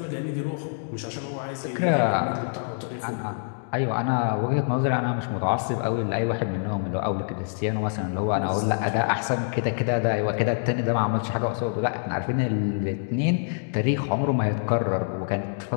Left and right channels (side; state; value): right; silent; digital silence